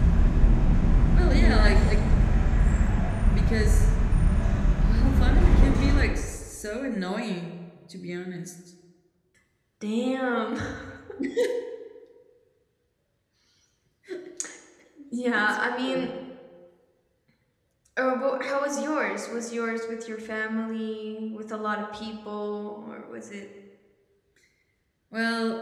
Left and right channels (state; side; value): identical; both; correlation 1.00